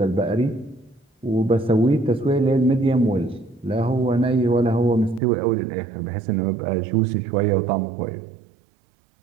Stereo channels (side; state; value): left; drops out; at 5.2 s